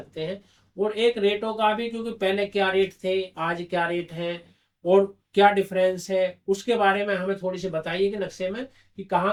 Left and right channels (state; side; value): identical; both; correlation 1.00